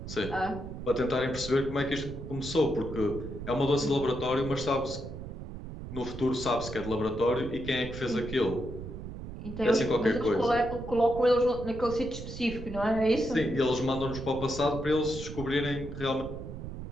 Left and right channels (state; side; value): noise; right; rumble, 9 dB below the sound